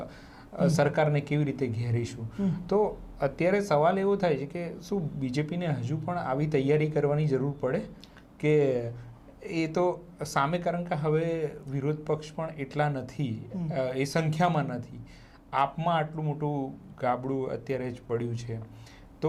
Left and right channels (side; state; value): both; identical; correlation 1.00